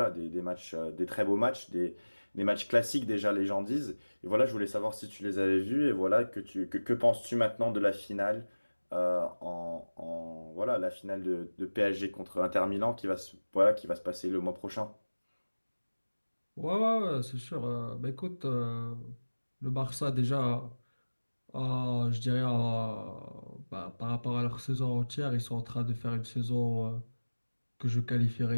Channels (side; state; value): both; inverted; correlation -1.00